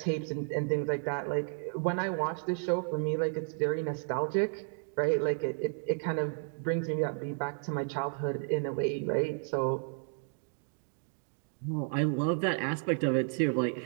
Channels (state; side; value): silent; left; 56 dB below the other